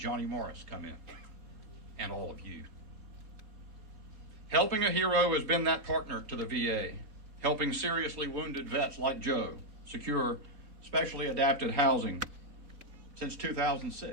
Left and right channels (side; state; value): left; late; 4.0 ms